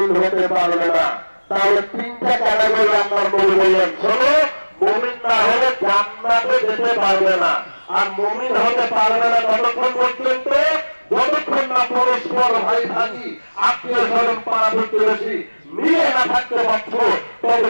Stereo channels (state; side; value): inverted; both; correlation -1.00